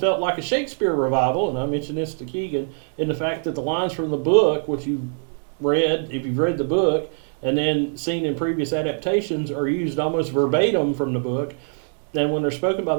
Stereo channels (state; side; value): silent; left; 60 dB below the other